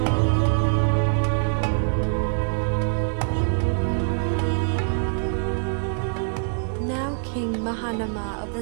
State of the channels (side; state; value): left; silent; digital silence